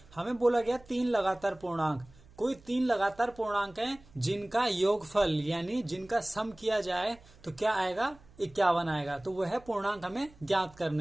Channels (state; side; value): noise; right; hum, 25 dB below the sound